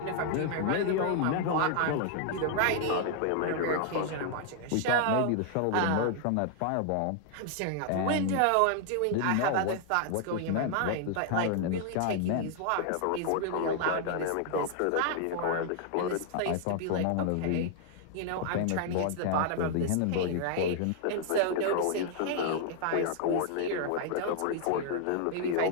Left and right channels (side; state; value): both; different; correlation 0.00